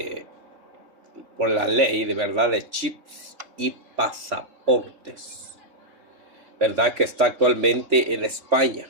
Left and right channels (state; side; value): late; left; 3.4 ms